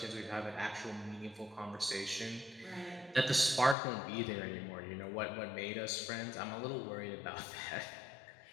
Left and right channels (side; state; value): right; drops out; at 3.8 s